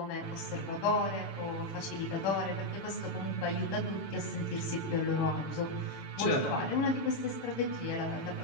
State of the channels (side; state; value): right; late; 7.0 ms